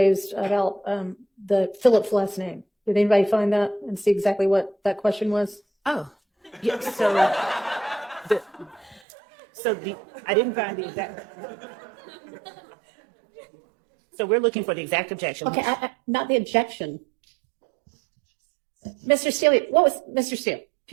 about the Phillips last name. Did anybody find that and see exactly what that question was? Oh, yeah. I didn't find the exact. So we're looking for the exact objection. Okay, not the objection. Mr. Steele, Mr. Steele,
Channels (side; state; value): left; drops out; at 9.0 s